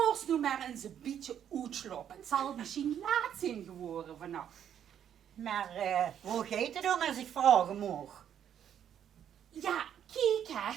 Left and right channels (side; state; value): left; quieter; 9.4 dB